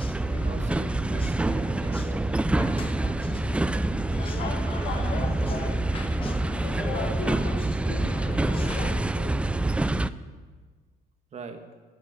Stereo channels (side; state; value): both; normal; correlation 0.90